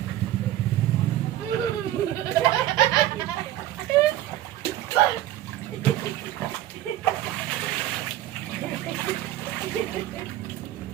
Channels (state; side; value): quieter; left; 13.7 dB